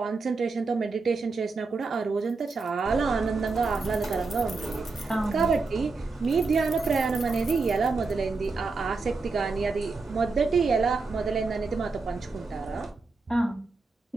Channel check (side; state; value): left; quieter; 4.1 dB